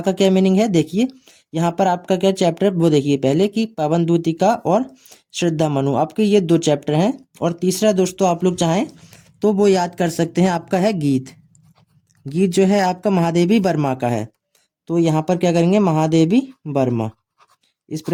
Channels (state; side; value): identical; both; correlation 1.00